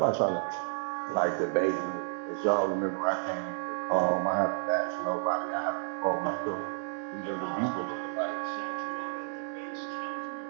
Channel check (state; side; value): silent; left; digital silence